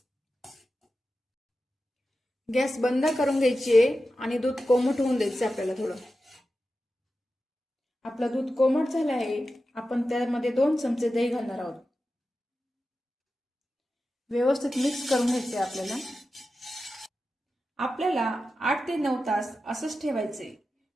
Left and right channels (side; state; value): both; normal; correlation 0.92